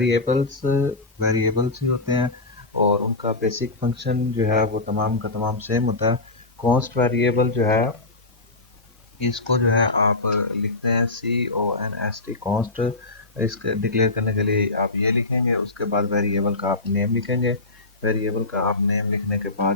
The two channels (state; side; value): quieter; right; 3.2 dB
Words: वेरिएबल्स ही होते हैं और उनका बेसिक फंक्शन जो है वो तमाम का तमाम सेम होता है। कॉन्स्ट वेरिएबल जो है इसको जो है आप लिखते हैं CONST कॉन्स्ट। इसके डिक्लेयर करने के लिए आप ये लिखेंगे, उसके बाद वेरिएबल का आप नेम लिखेंगे। वेरिएबल का आप नेम लिखने के